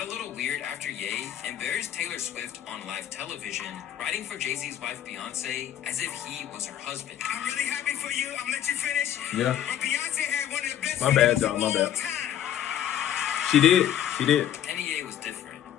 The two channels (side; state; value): right; quieter; 10.7 dB